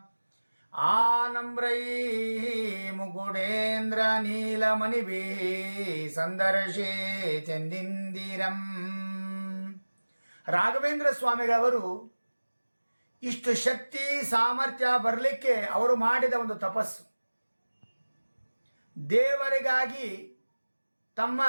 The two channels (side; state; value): both; inverted; correlation -1.00